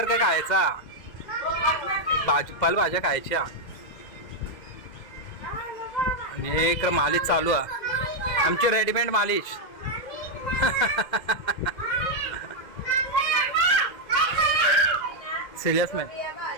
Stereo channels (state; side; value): late; right; 2.0 ms